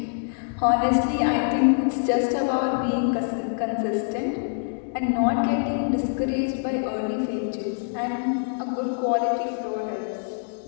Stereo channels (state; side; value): silent; right; 62 dB below the other